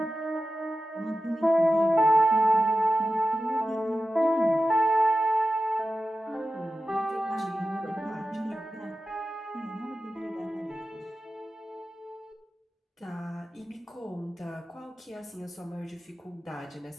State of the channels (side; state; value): both; normal; correlation 0.93